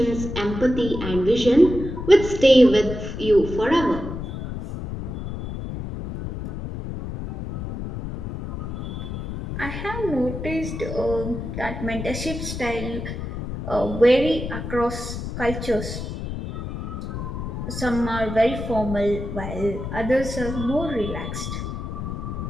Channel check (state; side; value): noise; left; rumble, 6 dB below the sound